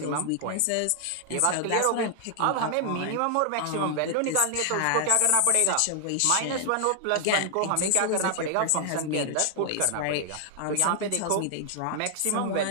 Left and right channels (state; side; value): different; both; correlation 0.00